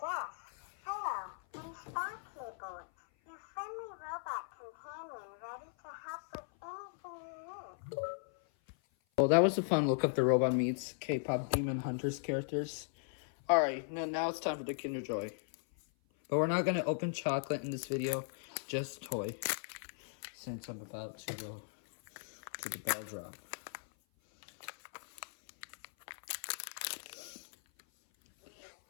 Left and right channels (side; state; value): right; silent; 53 dB below the other